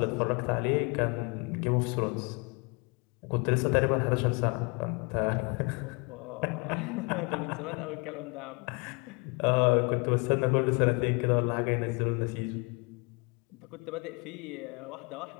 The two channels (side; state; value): right; quieter; 31.1 dB